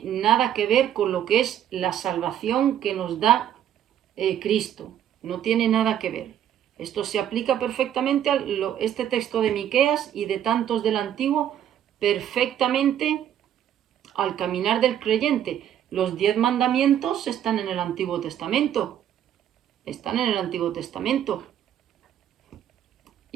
nada que ver con lo que es la salvación que nos da Cristo. No tiene nada que ver. Esto se aplica perfectamente a este texto de Miqueas y de tantos del Antiguo, perfectamente al caminar del creyente. Los 10 mandamientos están en el Antiguo Testamento. Están en el Antiguo Testamento.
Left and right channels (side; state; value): left; quieter; 10.4 dB